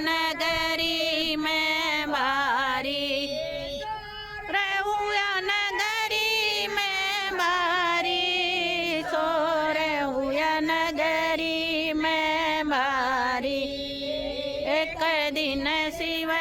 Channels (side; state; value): both; identical; correlation 1.00